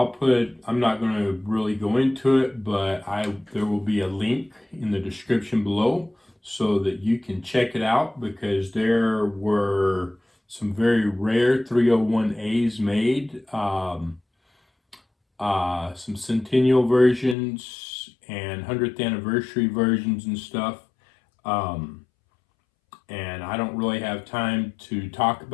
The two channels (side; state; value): right; drops out; at 17.4 s